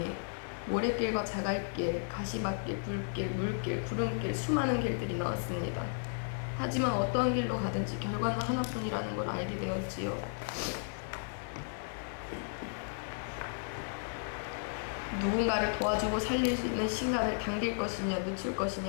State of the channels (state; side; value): silent; right; 55 dB below the other